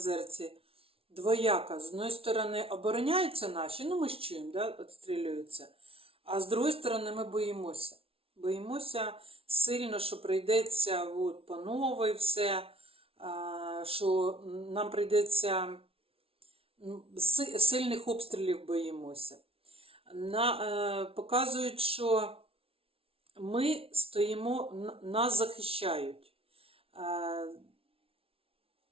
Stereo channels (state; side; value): late; left; 0.27 ms